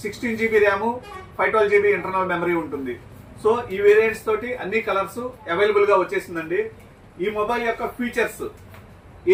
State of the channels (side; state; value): both; identical; correlation 1.00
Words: 16GB RAM 512GB internal memory ఉంటుంది. సో ఈ వేరియంట్స్ తోటి అన్ని కలర్స్ అవైలబుల్గా వచ్చేసిందండి. ఈ మొబైల్ యొక్క ఫీచర్స్